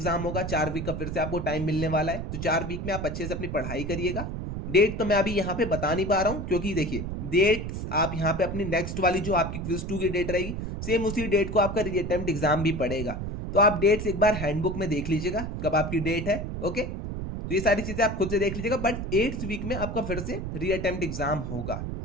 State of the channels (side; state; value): right; noise; rumble, 5 dB below the sound